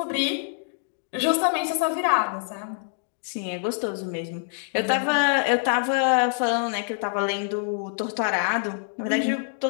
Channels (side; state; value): right; silent; digital silence